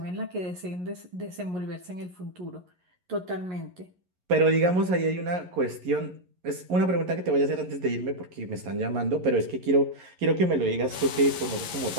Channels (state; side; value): late; left; 11 ms